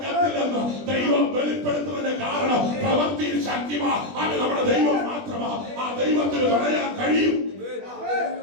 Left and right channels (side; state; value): left; late; 20 ms